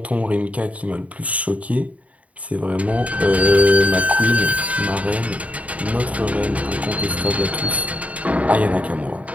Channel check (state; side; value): late; left; 0.068 ms